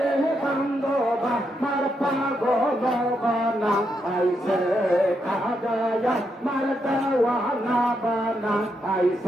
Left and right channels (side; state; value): both; normal; correlation 0.81